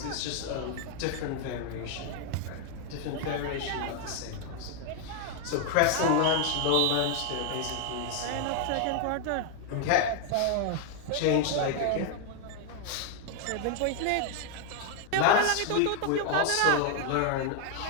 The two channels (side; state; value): both; different; correlation 0.00